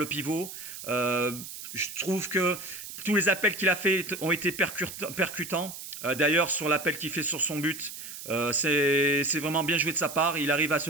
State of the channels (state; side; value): noise; right; hiss, 11 dB below the sound